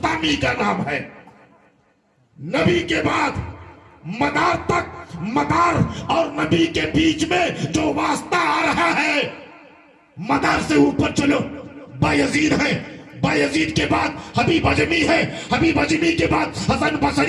کا نام ہے۔ نبی کے بعد مدار تک، مدار اور نبی کے بیچ میں جو واسطہ آ رہا ہے، مدار سے اوپر چلو، بایزید ہے، بایزید کے بعد حبیب اجمی ہے، حبیب اجمی کے بعد حسن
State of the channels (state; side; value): identical; both; correlation 1.00